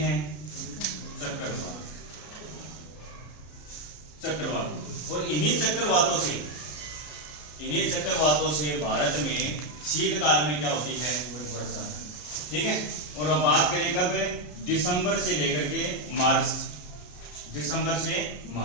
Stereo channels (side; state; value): right; late; 33 ms